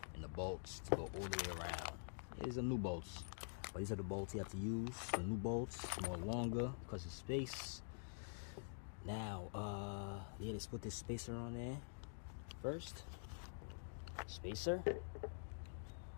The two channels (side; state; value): right; silent; digital silence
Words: and the bolts to go all the way around. These are new bolts, but these are the bolts you have to use. The new bolts, more longer because of space. Now yeah, let's put this spacer on there first. Spacer,